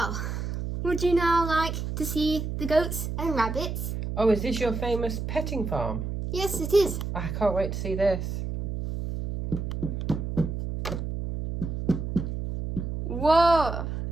would you now like to see the goats and rabbits? Oh, is this your famous petting farm? Yes, it is. I can't wait to see this. Whoa.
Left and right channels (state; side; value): noise; right; hum, 4 dB below the sound